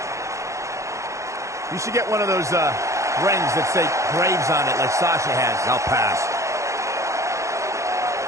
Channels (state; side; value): late; left; 0.15 ms